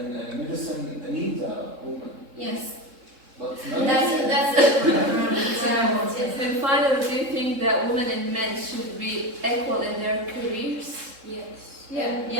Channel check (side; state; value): left; late; 3.7 ms